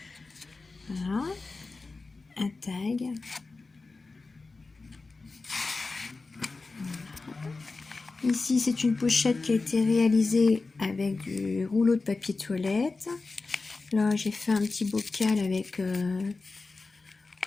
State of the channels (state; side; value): quieter; right; 3.8 dB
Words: Voilà. Un tag. Ici, c'est une pochette qui a été réalisée avec du rouleau de papier toilette. Là, j'ai fait un petit bocal avec